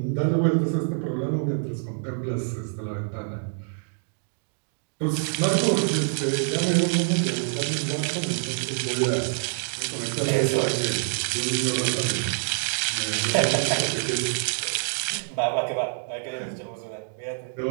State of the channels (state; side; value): silent; left; digital silence